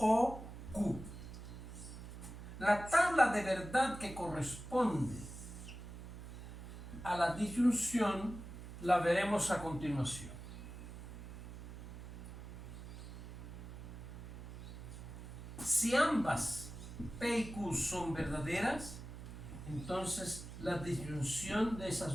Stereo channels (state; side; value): noise; right; hum, 11 dB below the sound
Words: Q. La tabla de verdad que corresponde a la disyunción la veremos a continuación. Si ambas P y Q son verdaderas, entonces la disyunción de